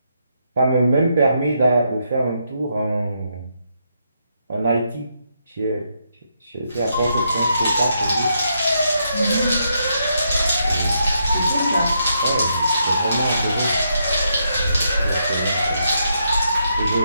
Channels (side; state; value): both; inverted; correlation -0.79